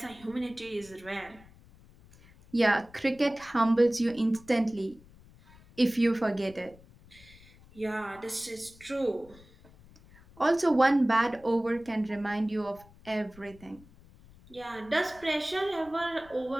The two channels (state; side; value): noise; left; rumble, 24 dB below the sound